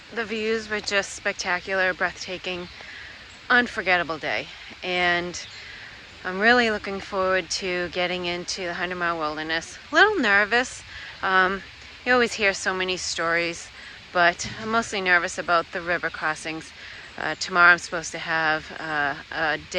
the views were just spectacular, breathtaking, unforgettable day. And I'm really looking forward to getting into the 100-mile wilderness. A little nervous. You always hear so many stories, but I'm mostly nervous about the river crossings. Tomorrow I'm supposed to have a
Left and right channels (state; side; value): identical; both; correlation 1.00